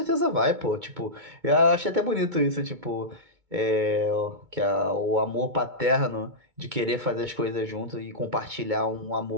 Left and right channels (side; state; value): left; late; 2.2 ms